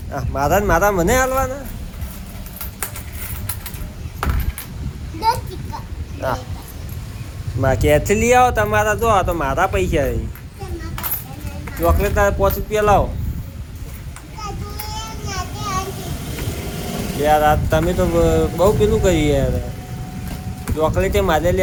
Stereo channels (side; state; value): both; identical; correlation 1.00